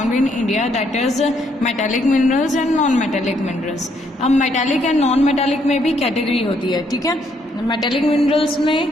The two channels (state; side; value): normal; both; correlation 0.71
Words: in India, that is metallic minerals and non metallic minerals. अब मेटालिक एंड नॉन मेटालिक में भी कैटेगरी होती है, ठीक है। मेटालिक मिनरल्स